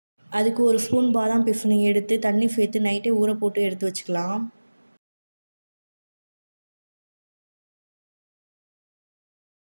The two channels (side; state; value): both; inverted; correlation -1.00